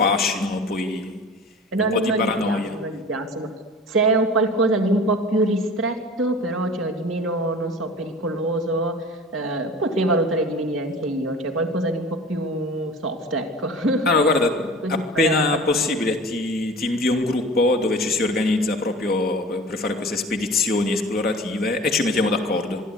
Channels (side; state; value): both; normal; correlation 0.40